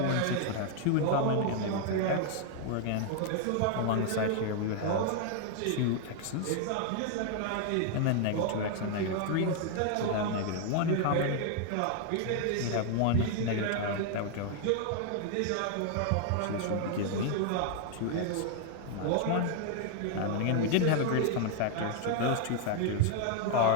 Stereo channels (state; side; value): different; both; correlation 0.00